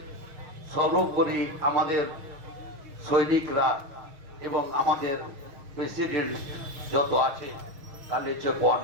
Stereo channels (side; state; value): left; late; 6.4 ms